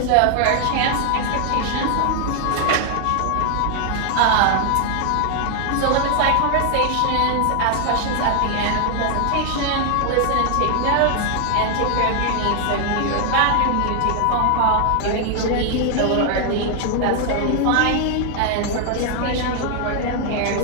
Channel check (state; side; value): different; both; correlation 0.00